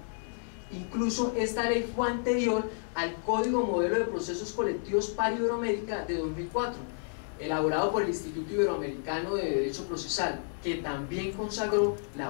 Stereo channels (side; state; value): right; silent; digital silence